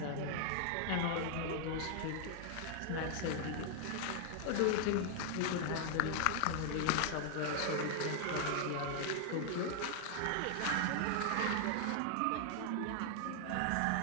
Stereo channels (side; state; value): both; different; correlation 0.00